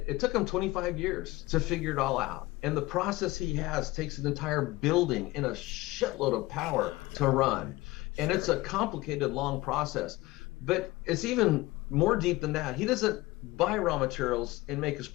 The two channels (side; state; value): right; quieter; 19.9 dB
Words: took him 25 years to figure it all out. And the process he has takes an entire building and a shitload of power to run. And it's a complicated, long process. But it's even more deep than that. He doesn't buy raw materials and make his